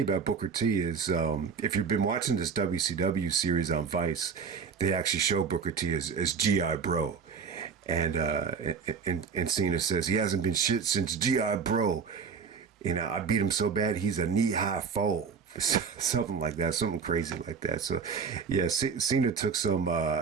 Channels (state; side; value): quieter; left; 6.0 dB